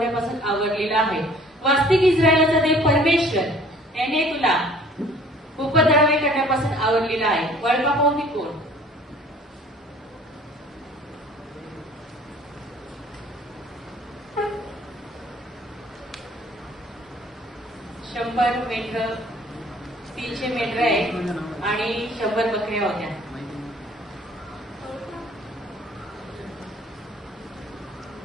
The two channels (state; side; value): normal; both; correlation 0.53